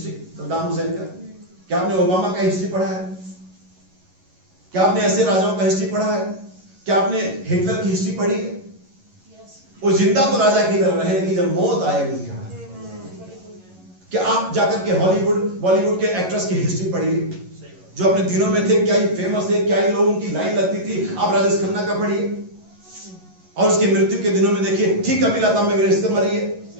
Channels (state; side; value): late; left; 11 ms